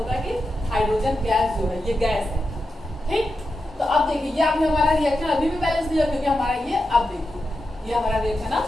है कि हाइड्रोजन गैस जो है ये गैस है। ठीक, तो अब देखिए, ये आपने हमारा रिएक्शन अभी भी बैलेंस नहीं हुआ, क्योंकि हमारा ये, अब देखिए ये हमारा रिएक्शन अब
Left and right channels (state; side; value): normal; both; correlation 0.88